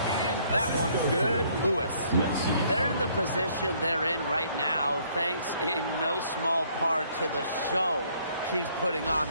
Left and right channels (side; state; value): both; inverted; correlation -0.64